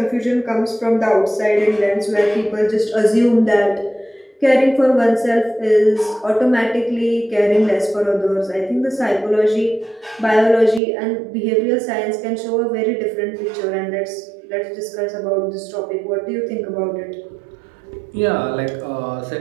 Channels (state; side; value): drops out; left; at 10.8 s